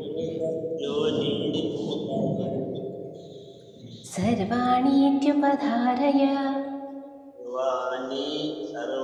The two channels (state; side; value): identical; both; correlation 1.00